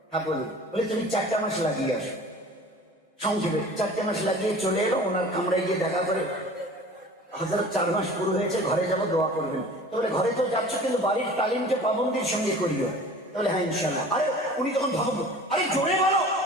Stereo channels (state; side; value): normal; both; correlation 0.43